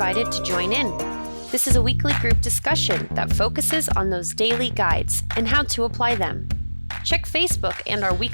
to join in. This is a weekly group discussion that focuses on those daily guides and how to apply them. Check Facebook and our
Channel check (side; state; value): both; inverted; correlation -1.00